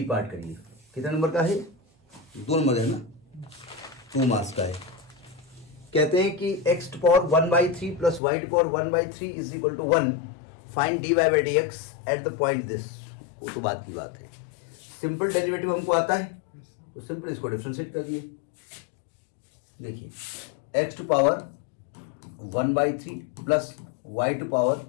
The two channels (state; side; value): drops out; right; at 8.2 s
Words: पार्ट करिए? कितने नंबर का है? 2 नंबर है ना, 2 मार्क्स का है। कहते हैं कि x to power 1/3 plus y to power 1/3 is equal to 1, find dy/dx at the point this. वो तो बात की बात है, सिंपल डेरिवेटिव हमको आता है तो सिंपल इसको डिफरेंशिएट कर दिए। देखिए x to power 1/3 plus y to power